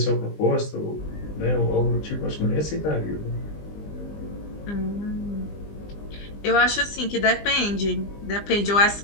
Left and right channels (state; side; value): late; right; 20 ms